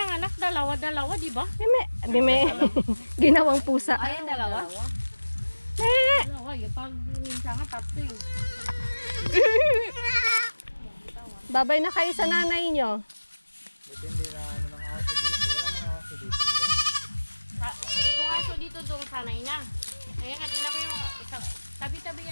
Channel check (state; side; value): inverted; both; correlation -1.00